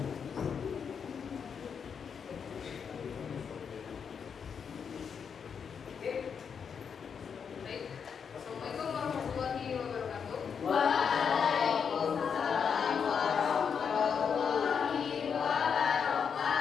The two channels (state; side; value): quieter; right; 6.8 dB